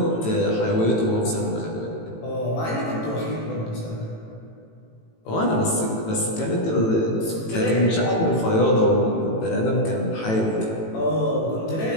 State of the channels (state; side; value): late; right; 18 ms